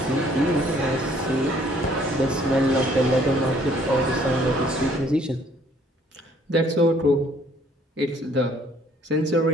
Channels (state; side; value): normal; both; correlation 0.61